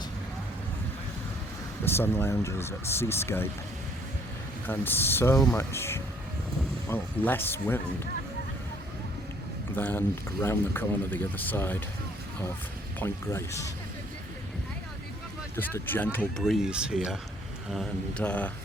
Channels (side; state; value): both; normal; correlation 0.62